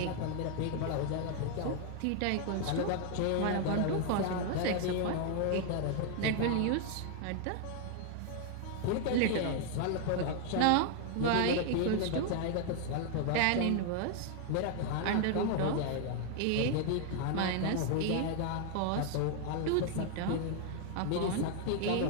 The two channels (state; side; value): different; both; correlation 0.00